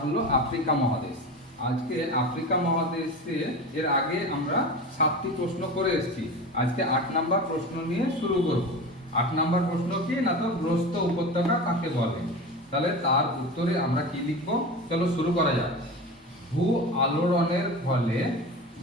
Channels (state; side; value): normal; both; correlation 0.29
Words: হলো আফ্রিকা মহাদেশ। আজকে আফ্রিকা মহাদেশে এর আগে আমরা 7টি প্রশ্ন করে এসেছি। আজকে 8 নাম্বার প্রশ্ন নিয়ে শুরু করব। 8 নাম্বার প্রশ্ন কি না, তো গ্রস্ত উপত্যকা কাকে বলে। তাহলে তার উত্তরে আমরা কি লিখব, চলো শুরু করা যাক। ভূ আলোড়নের ফলে